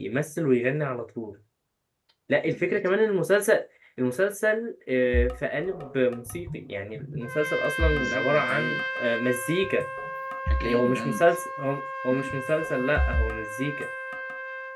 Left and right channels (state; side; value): identical; both; correlation 1.00